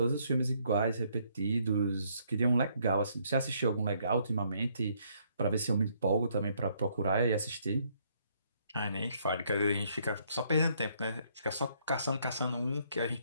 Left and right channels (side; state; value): both; inverted; correlation -0.69